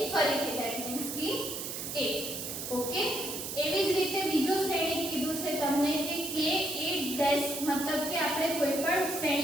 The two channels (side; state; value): right; noise; hiss, 6 dB below the sound